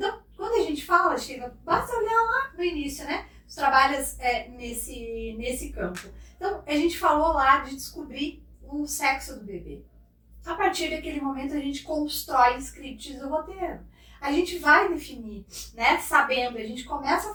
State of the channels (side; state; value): both; identical; correlation 1.00